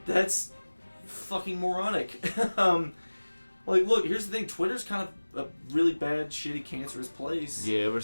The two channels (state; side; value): inverted; both; correlation -1.00